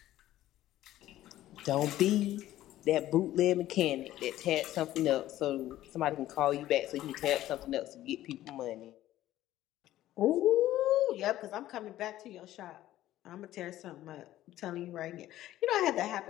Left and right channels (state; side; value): quieter; right; 14.2 dB